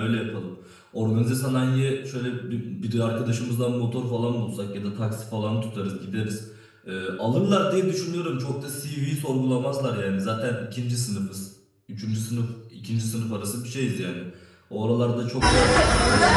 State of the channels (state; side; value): identical; both; correlation 1.00